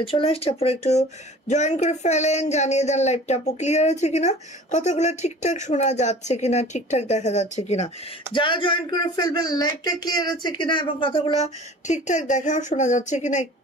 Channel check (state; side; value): normal; both; correlation 0.43